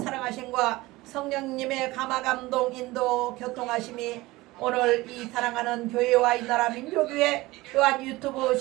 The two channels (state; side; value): quieter; left; 19.9 dB